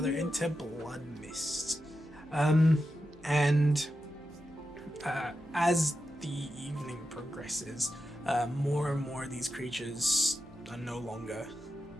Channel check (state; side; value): noise; left; hum, 26 dB below the sound